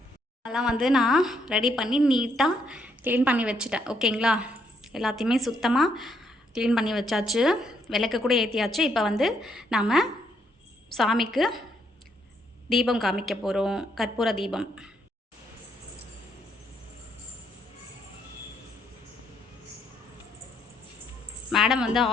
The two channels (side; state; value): both; normal; correlation 0.73